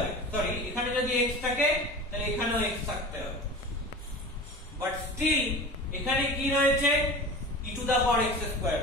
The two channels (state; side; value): normal; both; correlation 0.34